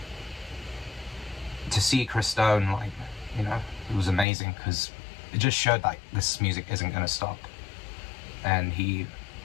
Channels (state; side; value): drops out; right; at 4.2 s